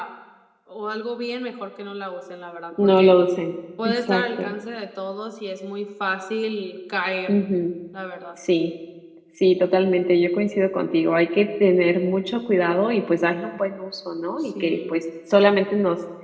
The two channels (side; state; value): both; identical; correlation 1.00